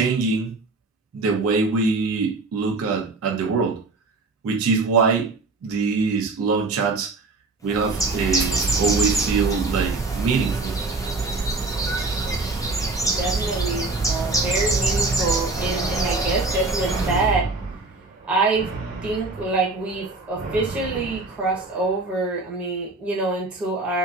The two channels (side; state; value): left; quieter; 3.4 dB